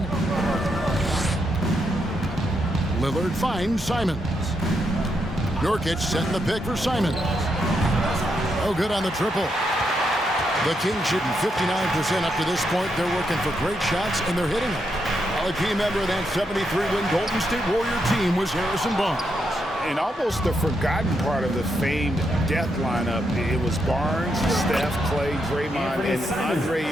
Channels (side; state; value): both; normal; correlation 0.81